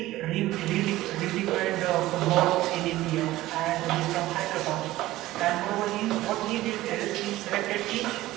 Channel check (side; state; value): left; quieter; 16.5 dB